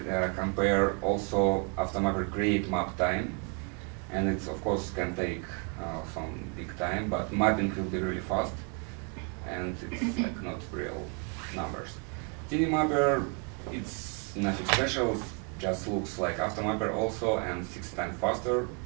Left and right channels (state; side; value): quieter; left; 36.7 dB